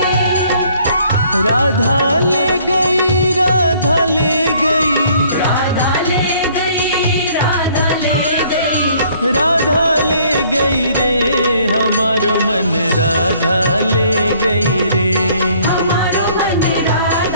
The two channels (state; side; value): inverted; both; correlation -0.60